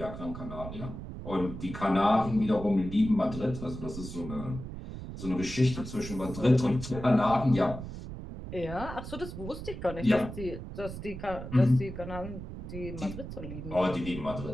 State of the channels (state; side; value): noise; right; rumble, 9 dB below the sound